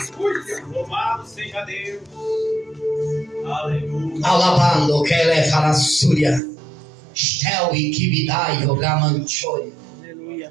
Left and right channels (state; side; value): drops out; left; at 6.4 s